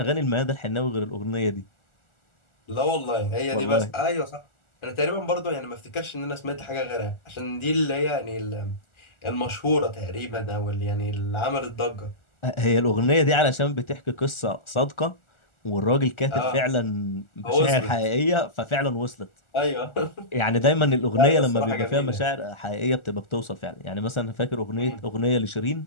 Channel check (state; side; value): late; right; 1.4 ms